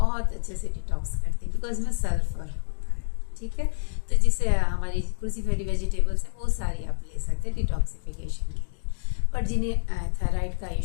अच्छे से डिटॉक्स करती है, बिकॉज में सल्फर होता है, ठीक है। तो जिससे हमारी क्रूसीफेरी वेजिटेबल्स है वो सारी आप ले सकते हैं डिटॉक्सिफिकेशन के लिए। पर जिन्हें थायराइड का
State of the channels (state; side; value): silent; right; digital silence